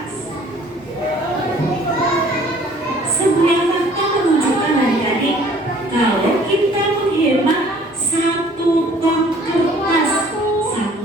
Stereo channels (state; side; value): normal; both; correlation 0.54